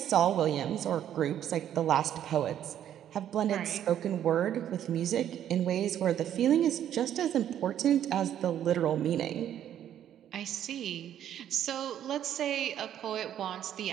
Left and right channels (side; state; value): left; quieter; 10.5 dB